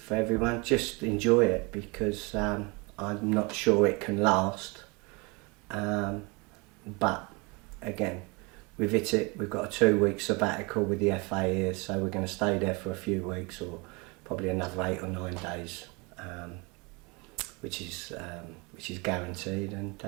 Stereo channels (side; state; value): left; quieter; 28.3 dB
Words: everyone, just enjoy it, because I'm not sure it can last. But again, we've hit it. We've got a 2-week sabbatical with the FA here, so we're going to stay there for a few weeks, or probably another 8 or 9 days, which is guaranteed. And